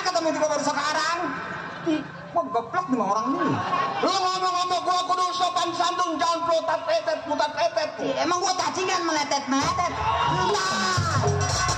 Ketemu juga baru sekarang. Gua goblok nih orang ini. Lu ngomong-ngomong gua kudu sopan santun, jangan putat tetet. Emang gua cacingan meletet. Nah.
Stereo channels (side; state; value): both; identical; correlation 1.00